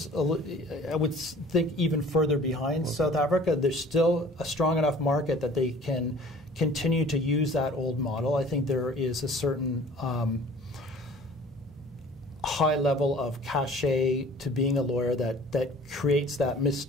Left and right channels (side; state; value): both; normal; correlation 0.49